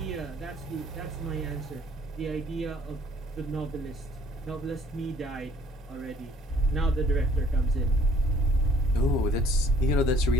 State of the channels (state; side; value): normal; both; correlation 0.57